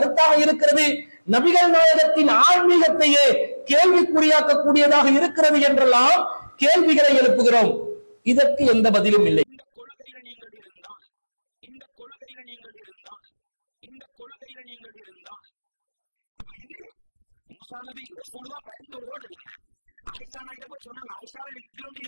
இருக்கிறது. நபிகள் நாயகத்தின் ஆன்மீகத்தையே கேள்விக்குறியாக்கக்கூடியதாக இருக்கிறது என்றெல்லாம் கேள்விகளை எழுப்புகிறோம். இதற்கு எந்த பதிலும் இல்லை. இந்த கொள்கையில நீங்கள் இருந்தால், இந்த கொள்கையில நீங்கள் இருந்தால், இந்த கொள்கையில நீங்கள் இருந்தால், அப்ப இது மூசா நபி ரசூலுல்லாஹ் பயந்து ஓடல்ல. ஆயிஷா நாயிட்ட போய் சொன்னாங்க, ஆயிஷாவே எனக்கு இப்படி ஒன்று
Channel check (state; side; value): inverted; both; correlation -1.00